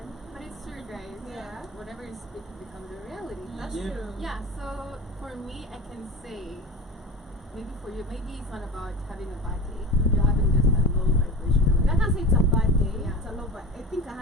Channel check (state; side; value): normal; both; correlation 0.32